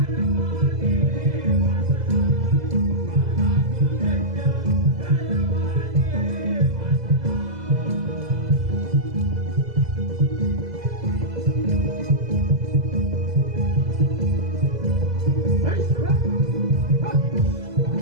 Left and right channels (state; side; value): late; left; 2.0 ms